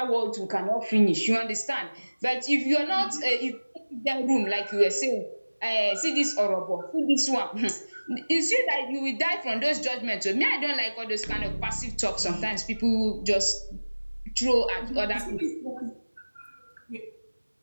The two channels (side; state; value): both; inverted; correlation -1.00